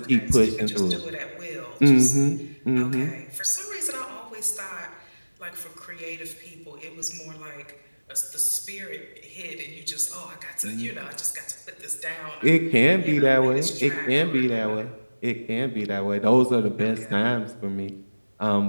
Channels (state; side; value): inverted; both; correlation -1.00